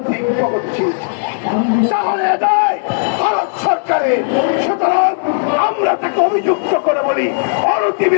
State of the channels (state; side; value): silent; right; digital silence